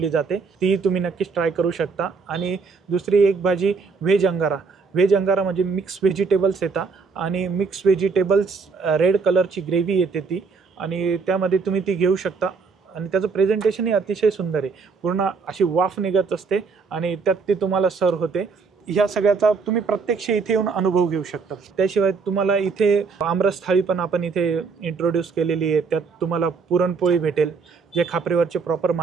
जाते. ती तुम्ही नक्कीच ट्राय करू शकता. आणि दुसरी एक भाजी व्हेज अंगारा. व्हेज अंगारा म्हणजे मिक्स व्हेजिटेबल्स येतात आणि मिक्स व्हेजिटेबल्स रेड कलरची ग्रेव्ही येते ती आणि त्यामध्ये तुम्ही ती घेऊ शकता. आणि त्याचं प्रेझेंटेशनही अतिशय सुंदर आहे. पूर्ण अशी वाफ निघत असते आणि त्यात ती तुम्हाला सर्व होते. ह्या सगळ्याचा तुम्ही प्रत्यक्ष इथे येऊन अनुभव घेऊ शकता. त्याशिवाय तुम्हाला इथे आमरस थाळी पण आपण इथे इंट्रोड्यूस केलेली आहे. त्यात तुम्हाला पुरणपोळी भेटेल. जे खापरीवरचे प्रॉपर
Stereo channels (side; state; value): left; quieter; 4.9 dB